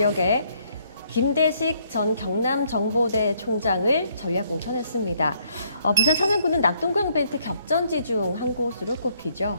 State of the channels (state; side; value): inverted; both; correlation -0.68